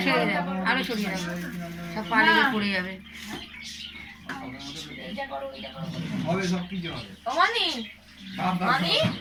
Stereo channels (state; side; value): identical; both; correlation 1.00